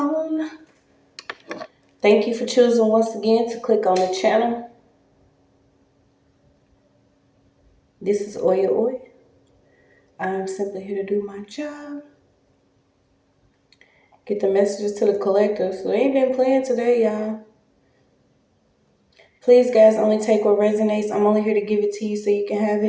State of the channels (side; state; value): both; identical; correlation 1.00